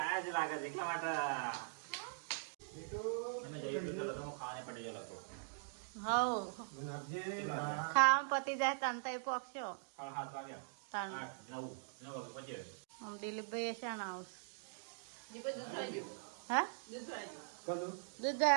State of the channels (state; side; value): silent; left; digital silence